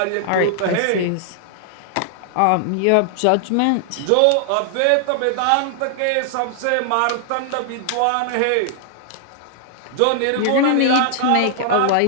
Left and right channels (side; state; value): both; different; correlation -0.01